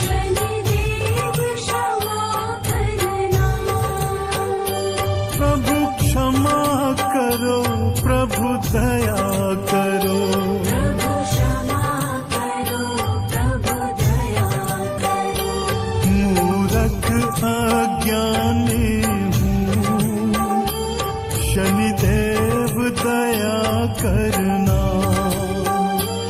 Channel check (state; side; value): identical; both; correlation 1.00